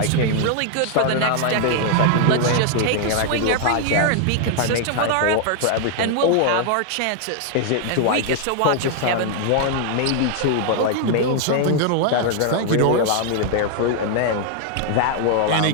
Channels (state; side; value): different; both; correlation 0.00